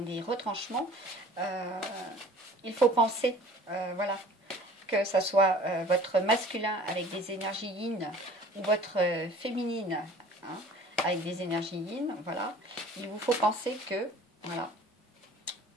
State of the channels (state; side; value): normal; both; correlation 0.48